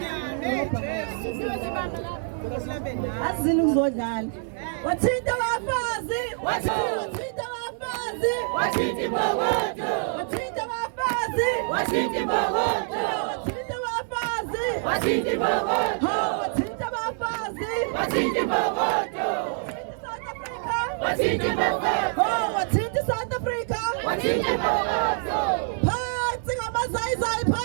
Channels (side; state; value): left; silent; 61 dB below the other